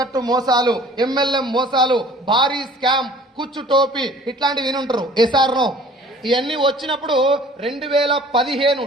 కట్టు మోసాలు, MLM మోసాలు, భారీ స్కామ్, కుచ్చు టోపీ, ఇట్లాంటివి వినుంటారు. ఎస్ఆర్నో ఇవన్నీ వచ్చినప్పుడు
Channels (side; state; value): both; normal; correlation 0.50